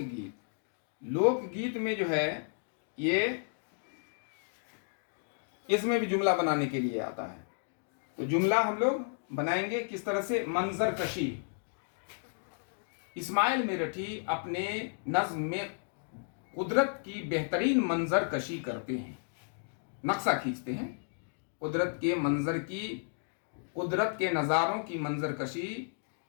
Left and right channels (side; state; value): right; silent; digital silence